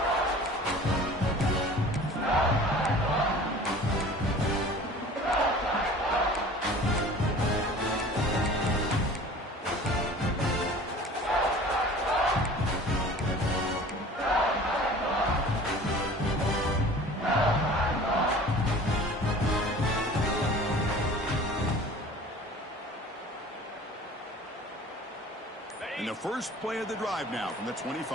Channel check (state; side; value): normal; both; correlation 0.44